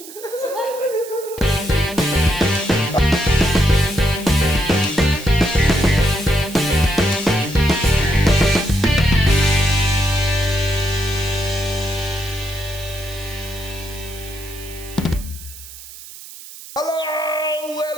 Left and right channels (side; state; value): right; noise; hiss, 16 dB below the sound